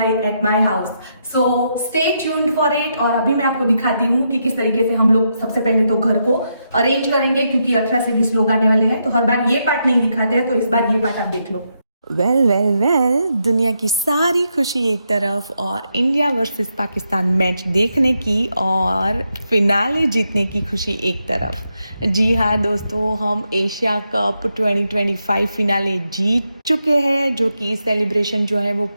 at my house. So stay tuned for it. और अभी मैं आपको दिखाती हूँ कि किस तरीके से हम लोग सबसे पहले तो घर को अरेंज करेंगे क्योंकि 18 से 20 लोग आने वाले हैं, तो हर बार ये पार्ट नहीं दिखाते हैं, तो इस बार ये पार्ट आप देख लो। वेल दुनिया की सारी खुशी एक तरफ और इंडिया वर्सेस पाकिस्तान मैच देखने की और फिनाले जीतने की खुशी एक तरफ। जी हाँ दोस्तों, हम एशिया कप 2025 फिनाले जीत चुके हैं, जो कि सेलिब्रेशन जो है वो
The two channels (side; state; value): both; inverted; correlation -0.82